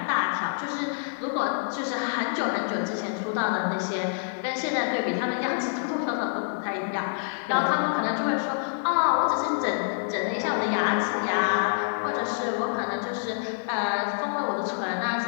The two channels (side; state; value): right; silent; digital silence